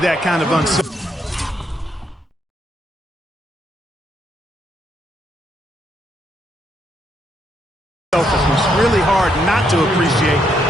kind of unselfishness. Really hard not to appreciate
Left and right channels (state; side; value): normal; both; correlation 0.76